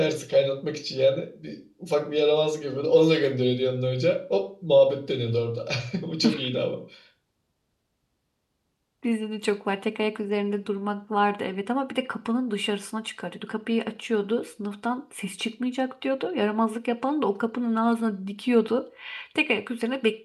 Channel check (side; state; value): both; identical; correlation 1.00